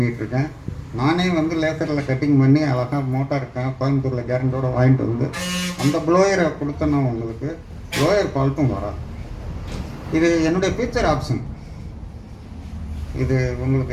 நானே வந்து லேசரில் கட்டிங் பண்ணி அழகாக மோட்டார் கோயம்புத்தூரில் கேரண்டோடு வாங்கிட்டு வந்து அந்த ப்ளோயரை கொடுத்தேன்னா உங்களுக்கு ப்ளோயர் ஃபால்ட்டும் வராது. இது என்னுடைய ஃபியூச்சர் ஆப்ஷன். இது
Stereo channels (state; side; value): identical; both; correlation 1.00